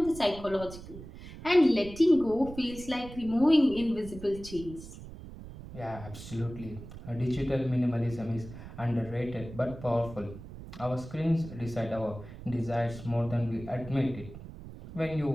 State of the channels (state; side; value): noise; right; rumble, 14 dB below the sound